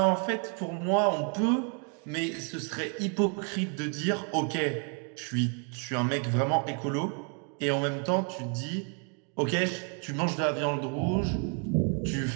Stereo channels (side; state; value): left; quieter; 39.9 dB